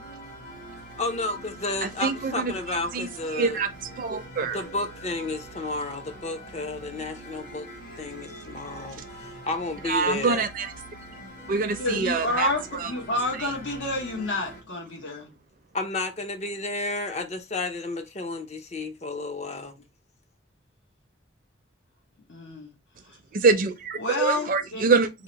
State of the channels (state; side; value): normal; both; correlation -0.01